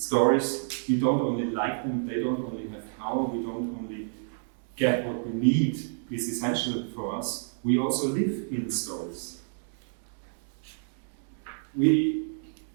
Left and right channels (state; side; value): silent; left; digital silence